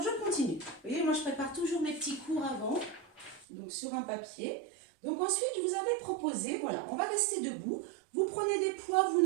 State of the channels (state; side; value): drops out; left; at 3.5 s